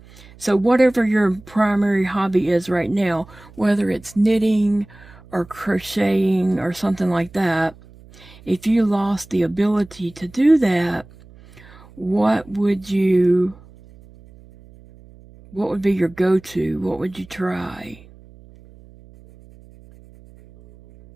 So whatever your primary hobby is right now, whether it's knitting or crocheting or something like that, if you lost the ability to do that, what would be your go-to? What would you try?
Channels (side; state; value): right; noise; hum, 23 dB below the sound